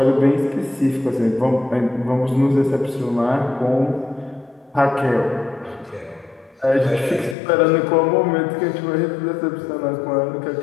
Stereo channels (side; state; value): right; drops out; at 7.4 s